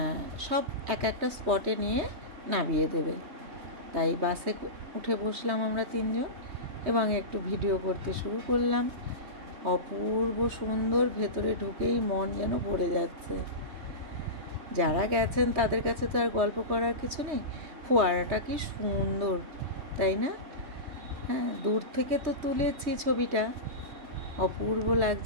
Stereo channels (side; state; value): left; late; 3.2 ms